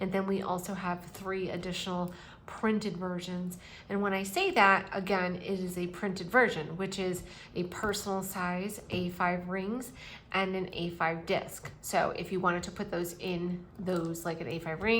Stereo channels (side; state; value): both; identical; correlation 1.00